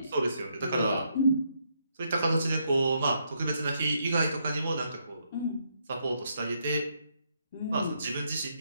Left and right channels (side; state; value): both; inverted; correlation -0.76